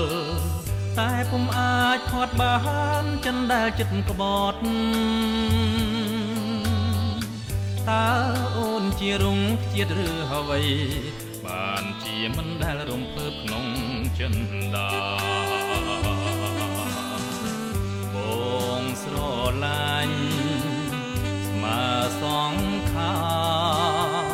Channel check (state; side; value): identical; both; correlation 1.00